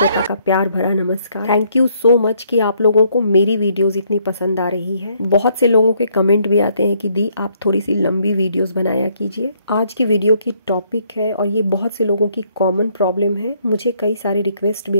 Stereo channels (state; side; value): inverted; both; correlation -0.69